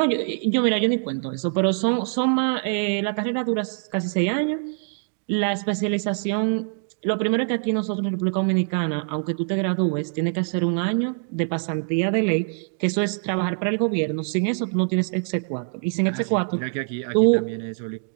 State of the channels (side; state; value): left; silent; 62 dB below the other